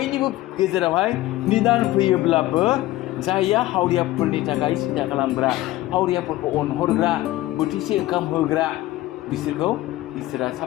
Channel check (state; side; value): quieter; right; 16.5 dB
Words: गेजेरावहाय निदान फैयोब्लाबो जायया हावरियाफोरनि थाखाय सिन्था खालामग्रा हावरियाफोरखौ अनहरग्रा बोथिसे ओंखाम होग्रा बिसोरखौ इसोरा